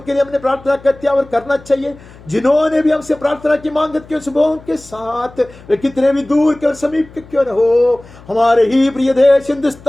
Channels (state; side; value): noise; left; hum, 22 dB below the sound